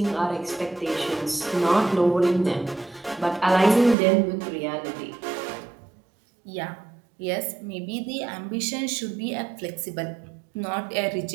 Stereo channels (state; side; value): drops out; left; at 4.0 s